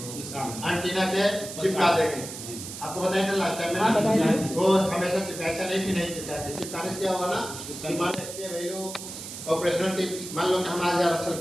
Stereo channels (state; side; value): noise; right; hiss, 10 dB below the sound